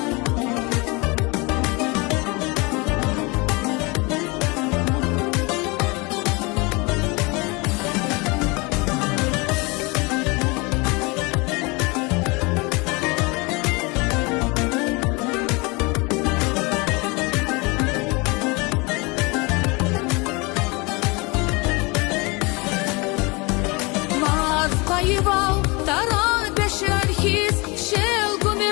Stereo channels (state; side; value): quieter; right; 27.1 dB